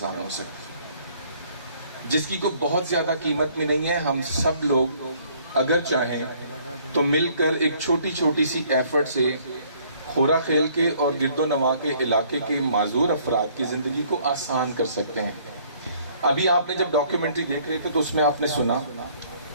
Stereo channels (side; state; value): both; inverted; correlation -0.61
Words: ہو سکتی، جس کی کوئی بہت زیادہ قیمت میں نہیں ہے۔ ہم سب لوگ اگر چاہیں تو مل کر ایک چھوٹی چھوٹی سی ایفرٹ سے خورا خیل کے اور گرد و نواح کے علاقے کے معذور افراد کی زندگی کو آسان کر سکتے ہیں۔ ابھی آپ نے جب ڈاکیومنٹری دیکھ رہے تھے تو اس میں آپ نے سنا